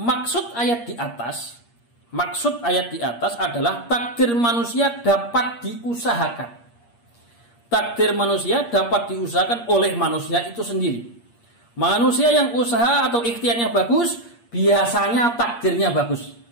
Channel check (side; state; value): right; late; 8.5 ms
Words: ayat di atas adalah takdir manusia dapat diusahakan. Takdir manusia dapat diusahakan oleh manusia itu sendiri. Manusia yang usaha atau ikhtiarnya bagus, biasanya takdirnya bagus.